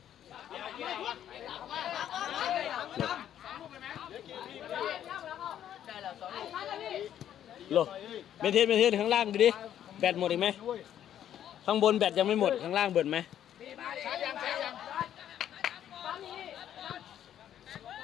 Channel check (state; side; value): quieter; right; 10.6 dB